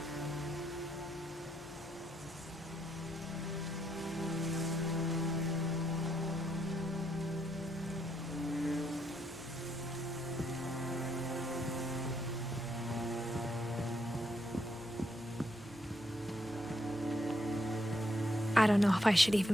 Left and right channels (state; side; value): normal; both; correlation 0.76